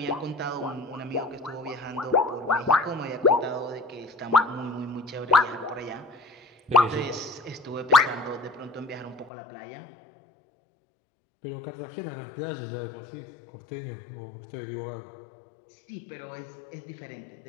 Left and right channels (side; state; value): right; drops out; at 9.3 s